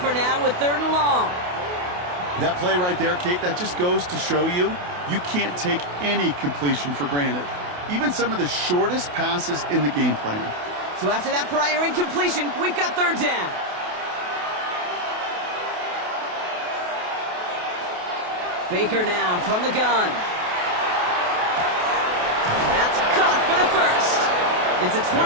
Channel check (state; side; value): late; left; 28 ms